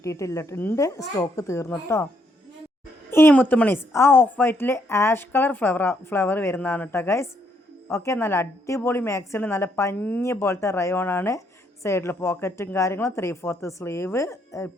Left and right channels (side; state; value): both; normal; correlation 0.72